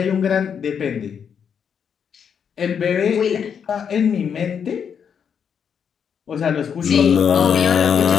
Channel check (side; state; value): right; quieter; 7.4 dB